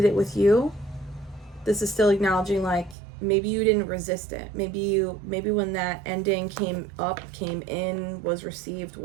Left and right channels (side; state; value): left; drops out; at 3.0 s